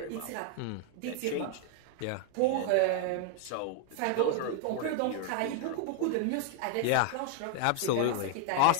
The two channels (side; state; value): both; different; correlation 0.00